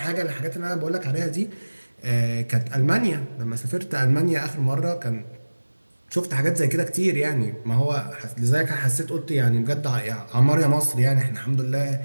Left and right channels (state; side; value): inverted; both; correlation -1.00